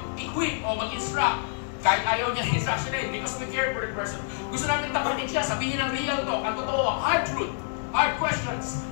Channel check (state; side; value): silent; right; digital silence